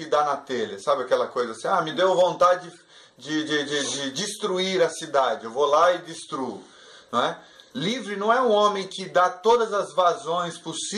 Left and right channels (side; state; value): both; identical; correlation 1.00